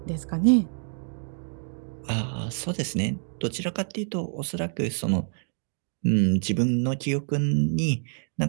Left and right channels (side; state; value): left; silent; 60 dB below the other